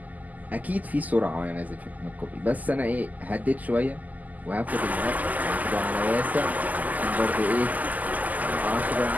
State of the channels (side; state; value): left; late; 0.080 ms